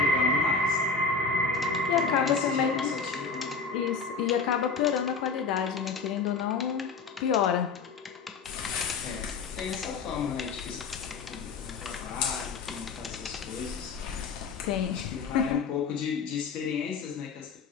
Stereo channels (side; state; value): right; quieter; 4.9 dB